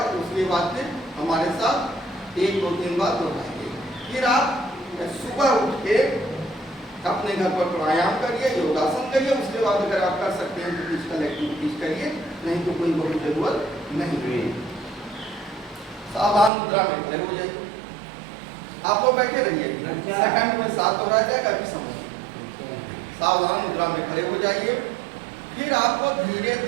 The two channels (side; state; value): left; drops out; at 16.5 s